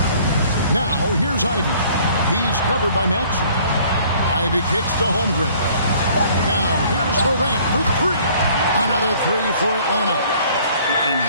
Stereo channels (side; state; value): both; inverted; correlation -0.56